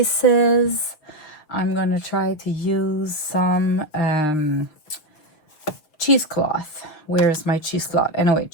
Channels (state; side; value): late; right; 6.7 ms